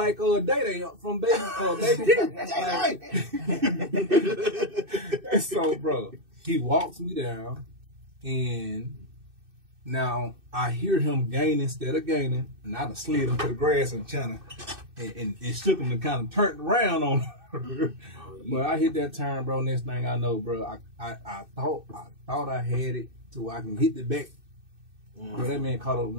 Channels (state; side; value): late; left; 2.6 ms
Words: Day from Baby. And so, bro, he walks me down, and now I hear him gain instead of gaining, and I done slid him to the grass and China, and shook him and kind of turned around on him. But I hit that turn, bro. Next thing I know, bro, I thought I had it to where I can hit the back. But that man caught up with